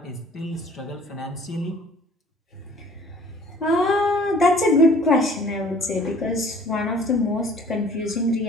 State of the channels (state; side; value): normal; both; correlation 0.52